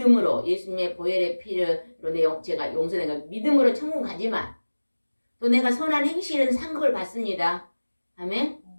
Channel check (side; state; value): both; inverted; correlation -1.00